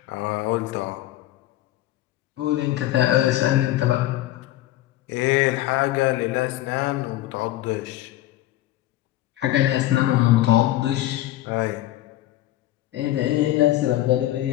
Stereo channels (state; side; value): quieter; right; 15.0 dB